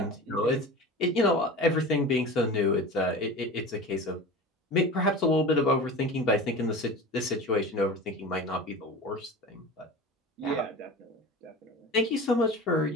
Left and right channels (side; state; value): both; normal; correlation 0.34